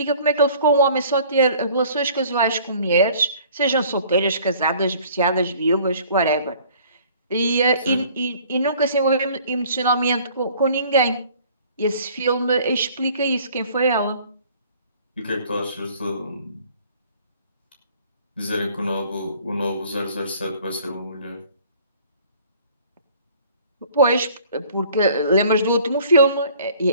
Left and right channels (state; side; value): inverted; both; correlation -0.53